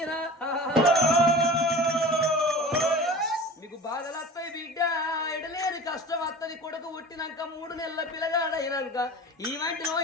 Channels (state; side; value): normal; both; correlation 0.37